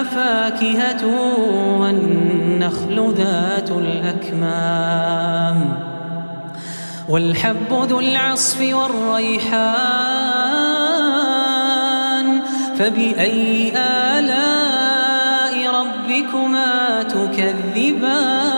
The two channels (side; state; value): both; inverted; correlation -1.00